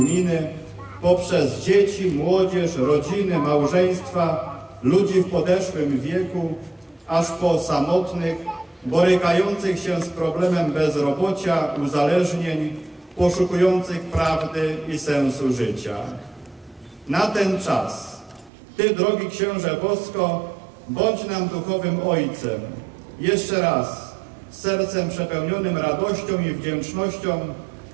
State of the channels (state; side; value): drops out; left; at 18.5 s